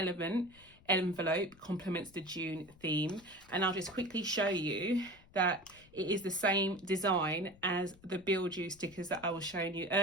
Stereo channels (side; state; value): left; noise; rumble, 25 dB below the sound